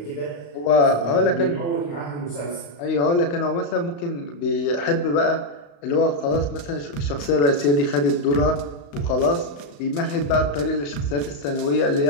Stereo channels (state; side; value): late; right; 35 ms